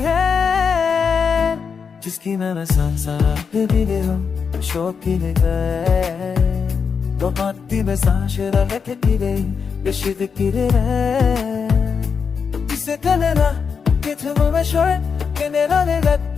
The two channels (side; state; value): right; quieter; 6.0 dB